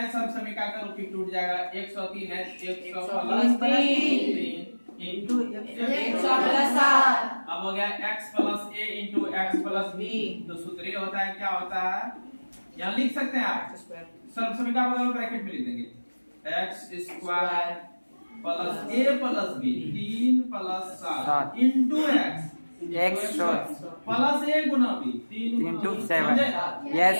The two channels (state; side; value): inverted; both; correlation -1.00